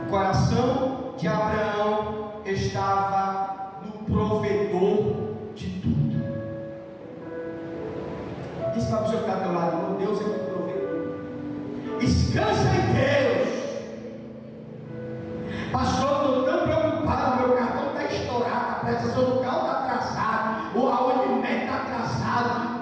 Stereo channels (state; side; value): identical; both; correlation 1.00